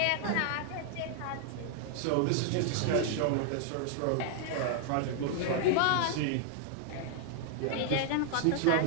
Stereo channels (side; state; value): both; different; correlation 0.00